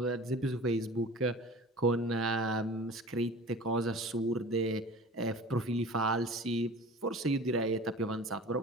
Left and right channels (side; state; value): both; normal; correlation 0.40